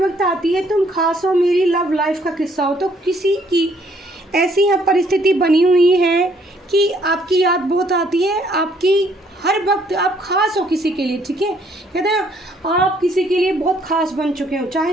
आती है, तुम खास हो, मेरी लव लाइफ का किस्सा हो। तो किसी की ऐसी यहाँ परिस्थिति बनी हुई है कि आपकी याद बहुत आती है, आपकी हर वक्त आप खास हो किसी के लिए, ठीक है। कहते हैं आप किसी के लिए बहुत खास बन चुके हो,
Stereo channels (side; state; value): both; normal; correlation 0.65